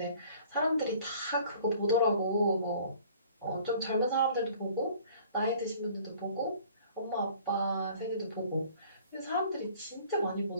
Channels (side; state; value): both; inverted; correlation -0.52